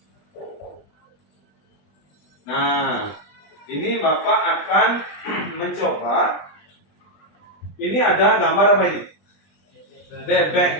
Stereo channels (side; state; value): right; late; 20 ms